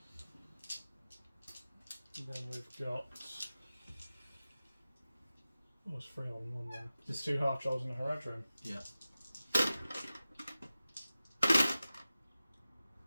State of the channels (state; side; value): inverted; both; correlation -0.96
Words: And then we've got. Oh, it's 3 on 1 there. There's 2 half trolls in a Haradrim. Yeah.